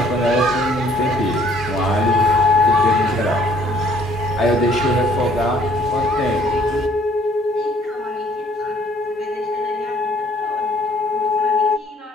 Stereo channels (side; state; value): both; normal; correlation 0.60